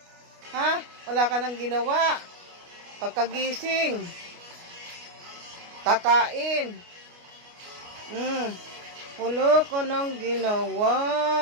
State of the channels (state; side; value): late; left; 29 ms